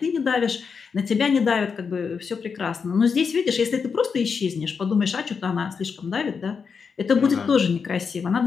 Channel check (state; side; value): quieter; right; 5.8 dB